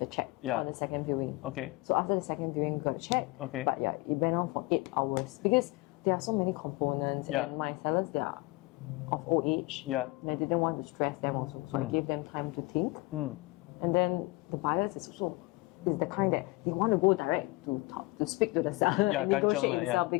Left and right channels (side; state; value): right; quieter; 22.9 dB